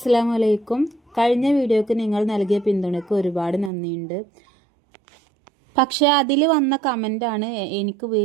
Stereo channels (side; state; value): left; drops out; at 3.7 s